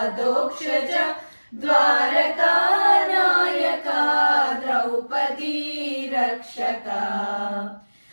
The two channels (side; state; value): both; inverted; correlation -1.00